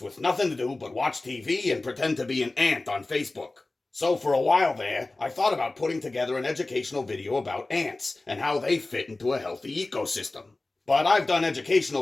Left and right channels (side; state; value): right; quieter; 3.1 dB